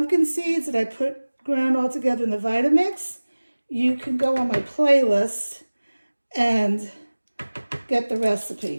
seeds that I ground all together in the Vitamix. You can go on my playlist and get the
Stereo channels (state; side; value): inverted; both; correlation -1.00